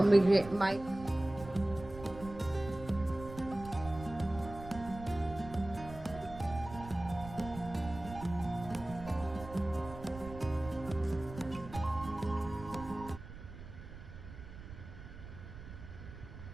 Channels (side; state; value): right; noise; rumble, 13 dB below the sound